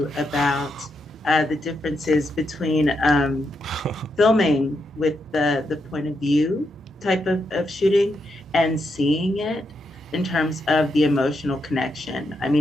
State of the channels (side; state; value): both; normal; correlation 0.82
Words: about the differences between filming with the point of view type of shooting and seeing it in terms of the emotional connection. I